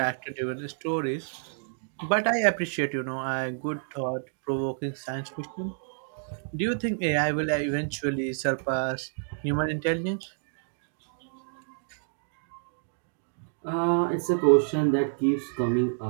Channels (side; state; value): left; silent; digital silence